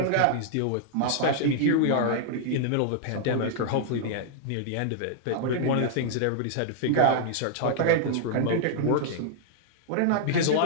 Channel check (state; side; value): different; both; correlation -0.01